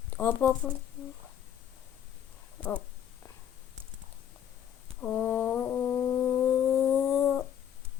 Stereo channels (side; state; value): right; quieter; 9.7 dB